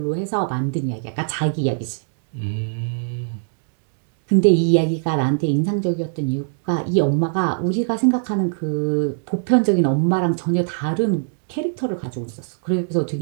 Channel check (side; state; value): left; silent; digital silence